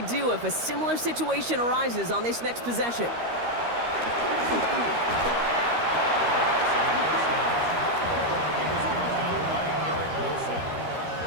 do if a similar situation arises on this next possession.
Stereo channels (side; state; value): left; late; 13 ms